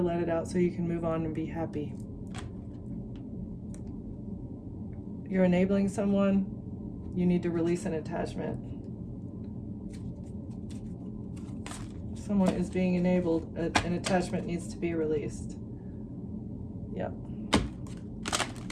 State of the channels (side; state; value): both; identical; correlation 1.00